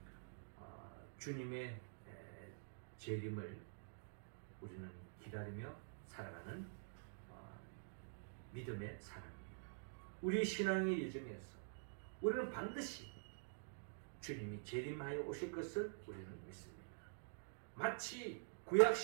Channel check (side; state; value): left; silent; digital silence